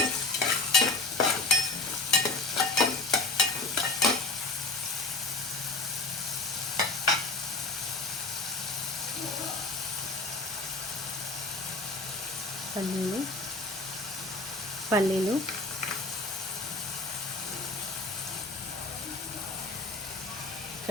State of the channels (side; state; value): right; quieter; 3.2 dB